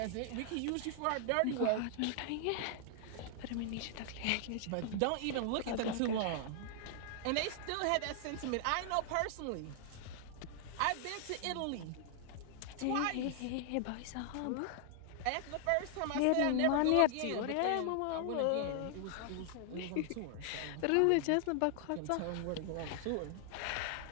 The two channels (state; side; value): different; both; correlation 0.00